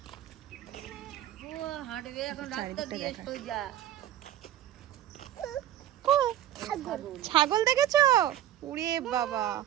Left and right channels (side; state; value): left; quieter; 12.2 dB